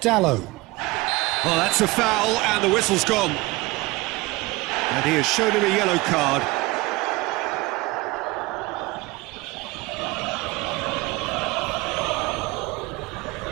Dallo. Oh, that's a foul, and the whistle's gone. And he has shown him a yellow card.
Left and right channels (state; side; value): quieter; left; 21.9 dB